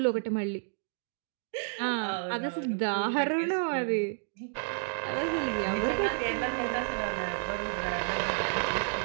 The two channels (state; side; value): silent; left; digital silence